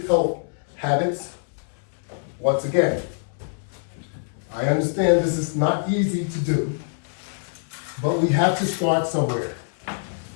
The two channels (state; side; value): silent; right; 62 dB below the other